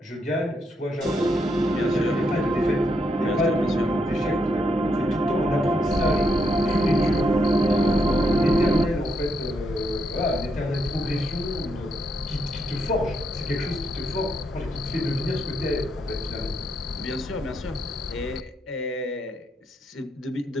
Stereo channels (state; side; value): normal; both; correlation 0.78